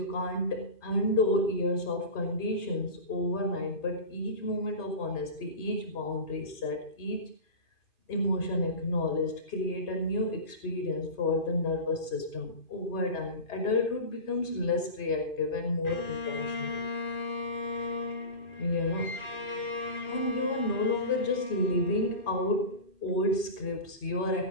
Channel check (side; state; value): right; late; 2.5 ms